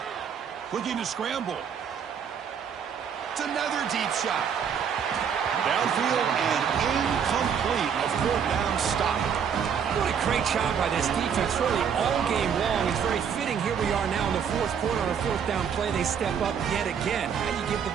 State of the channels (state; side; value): quieter; left; 7.4 dB